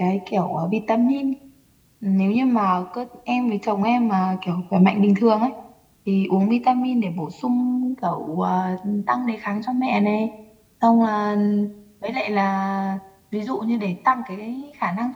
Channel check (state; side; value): identical; both; correlation 1.00